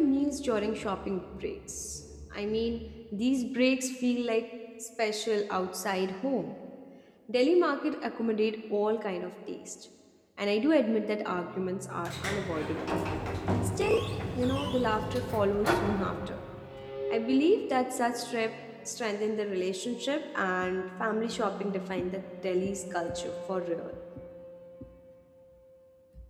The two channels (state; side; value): identical; both; correlation 1.00